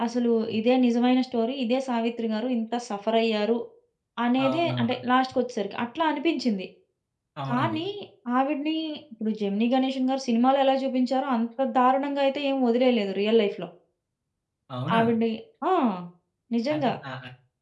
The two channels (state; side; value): identical; both; correlation 1.00